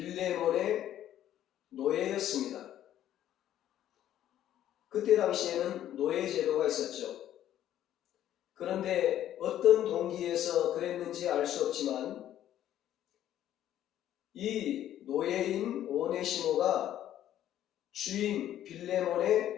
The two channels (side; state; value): right; quieter; 11.8 dB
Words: 노예였습니다. 그때 당시에는 노예제도가 있었죠. 그런데 어떤 동기에서 그랬는지 알 수 없지만 이 노예인 오네시모가 주인